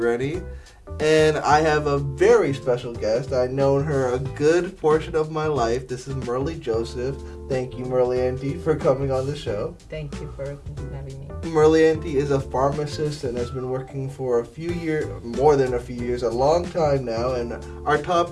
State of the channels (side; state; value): both; identical; correlation 1.00